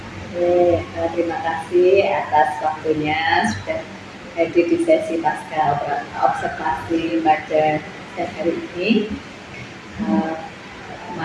Terima kasih atas waktunya sudah hadir di sesi pasca observasi pada siang hari ini.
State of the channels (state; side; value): identical; both; correlation 1.00